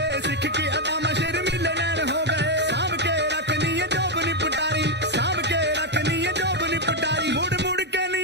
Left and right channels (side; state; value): both; normal; correlation 0.03